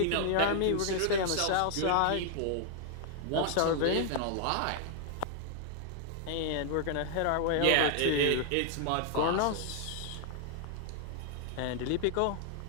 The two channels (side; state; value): both; different; correlation 0.00